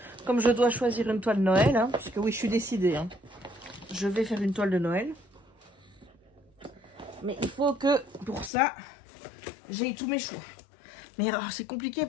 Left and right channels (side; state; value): right; drops out; at 8.5 s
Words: comme je dois choisir une toile de Noël, hein, parce que oui, je suis décidée. Hein, je vais faire une toile de Noël. Mais il faut que, pour ça, j'ai tous mes choix. Mais c'est compliqué